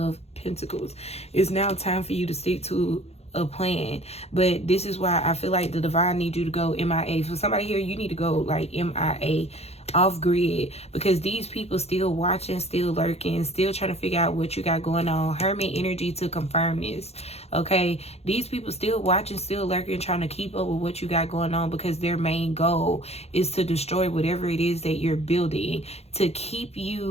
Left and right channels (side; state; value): right; late; 0.30 ms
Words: Pentacles. It's now time for you to stick to a plan. But this is why I feel like the divine needs you to go MIA. For somebody here, you need to go like MIA, off grid, because these people still watching, still lurking, still trying to figure out what you got going on. Hermit energy to confirm this. Okay, these people still watching, still lurking, trying to keep up with what you got going on, because their main goal is to destroy whatever it is that you're building, to keep